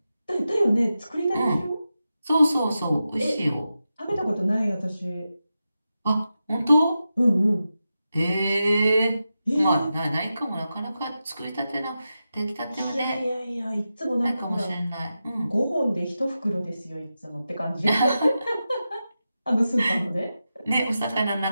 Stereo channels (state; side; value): inverted; both; correlation -0.91